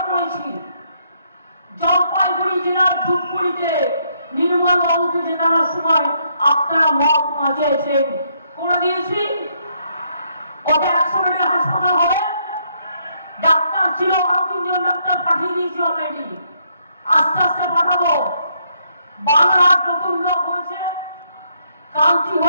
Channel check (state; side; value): inverted; both; correlation -0.73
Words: আপনারা মত মাঝেছেন করে দিয়েছি। ওটা 100 বেডের হাসপাতাল হবে, ডাক্তার ছিল আরো 3 জন ডাক্তার পাঠিয়ে দিয়েছি অলরেডি, আস্তে আস্তে পাঠাবো। বাংলার নতুন লোক হয়েছে, কান্তি